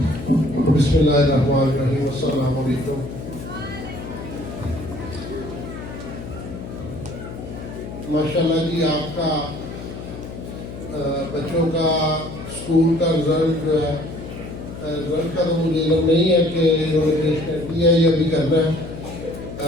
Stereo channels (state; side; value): noise; left; hum, 10 dB below the sound